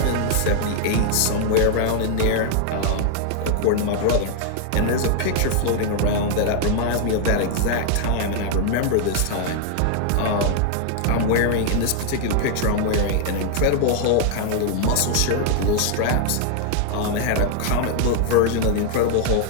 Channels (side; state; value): both; different; correlation 0.00